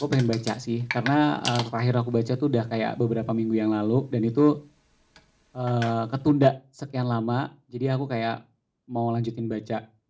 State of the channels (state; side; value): identical; both; correlation 1.00